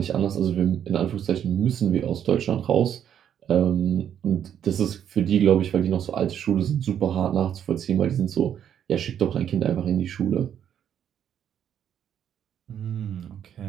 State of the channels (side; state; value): left; quieter; 9.4 dB